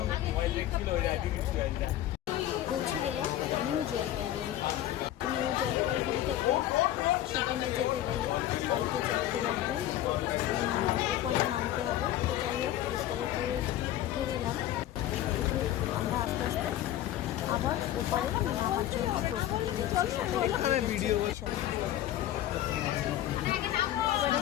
পৌঁছে গেলাম নিউ জলপাইগুড়ি। তো নিউ জলপাইগুড়ি থেকে সিকিমে যেতে গেলে গাড়িতে চাপতে লাগবে, ওপারে নামতে হবে। তো যাই হোক, এসকালেটরে উঠে গেলাম। উঠে আমরা আস্তে আস্তে আবার ওপারে নামার জন্য প্রস্তুতি নিচ্ছি। এবারে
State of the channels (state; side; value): quieter; right; 13.0 dB